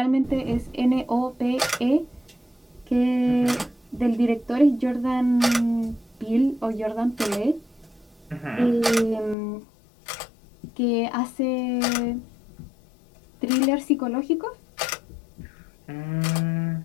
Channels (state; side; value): drops out; right; at 9.3 s